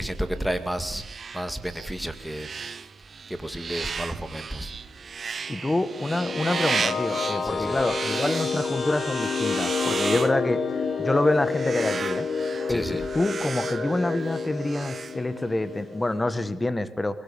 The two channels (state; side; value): normal; both; correlation 0.91